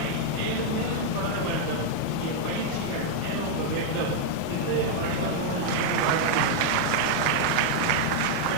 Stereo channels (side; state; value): both; different; correlation -0.01